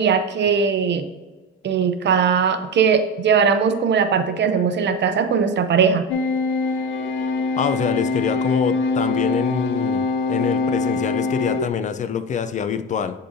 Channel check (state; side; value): normal; both; correlation 0.19